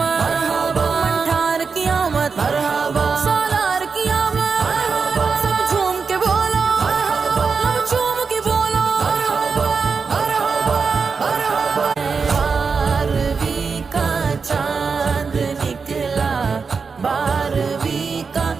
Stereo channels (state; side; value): quieter; left; 5.2 dB